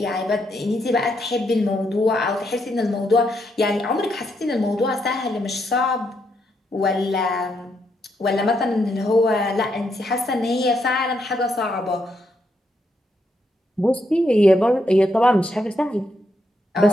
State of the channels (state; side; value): normal; both; correlation 0.78